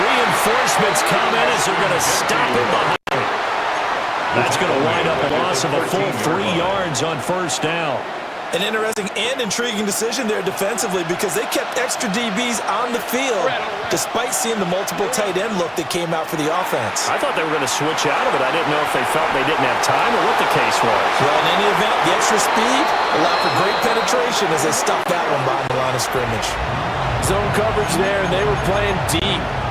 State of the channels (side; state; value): both; identical; correlation 1.00